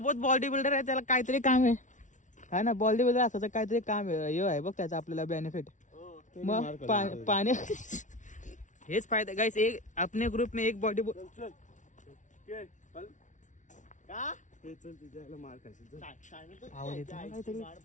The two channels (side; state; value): right; late; 0.37 ms